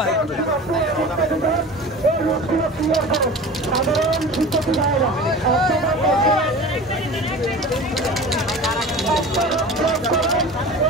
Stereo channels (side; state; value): both; normal; correlation 0.36